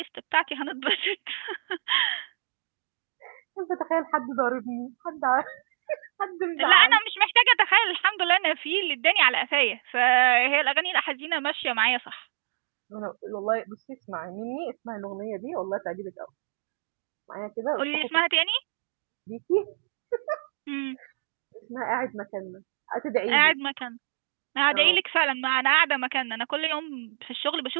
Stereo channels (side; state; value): left; silent; digital silence